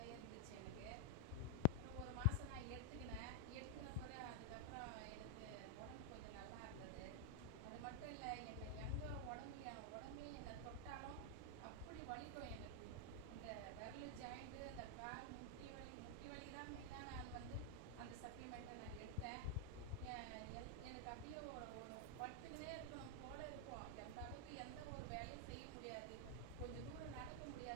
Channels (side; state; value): both; different; correlation 0.00